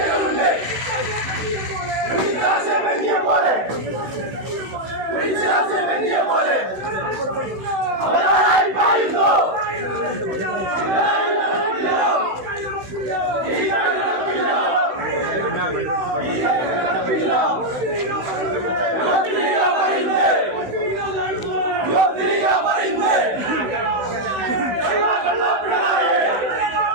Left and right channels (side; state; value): left; late; 16 ms